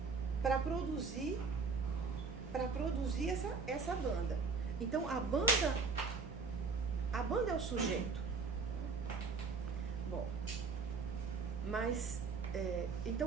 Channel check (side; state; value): left; quieter; 4.8 dB